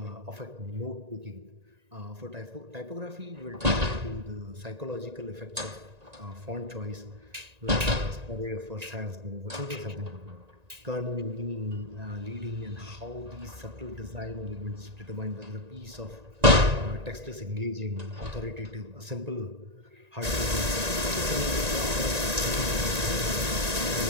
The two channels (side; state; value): left; late; 1.9 ms